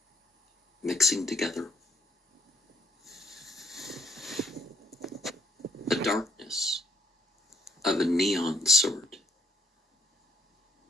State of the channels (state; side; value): normal; both; correlation 0.70